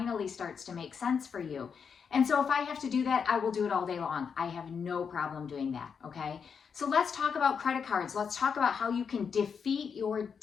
starts to make sense for you. And so if I have to do that, I will do it all day long. I have no problem doing that, okay? So let's talk about credit cards. Let's talk about how you can defeat your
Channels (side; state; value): right; quieter; 6.4 dB